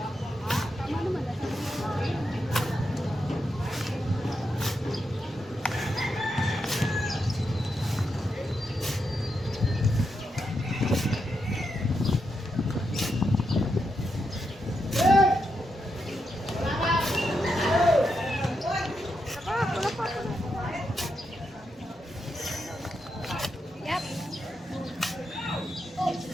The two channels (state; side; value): normal; both; correlation 0.84